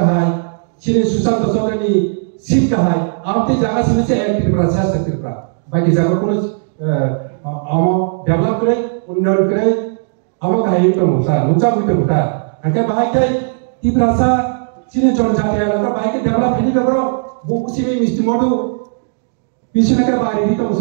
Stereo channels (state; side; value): silent; left; digital silence